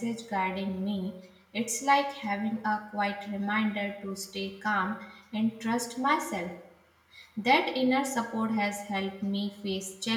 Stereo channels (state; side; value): identical; both; correlation 1.00